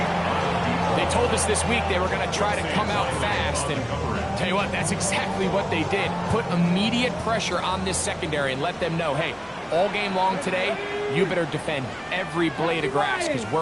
They told us this week they were going to try to come out fast, and tell you what, that's exactly what they did. Put immediate pressure on this secondary and let them know, hey, all game long today, you better defend every blade of grass because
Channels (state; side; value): identical; both; correlation 1.00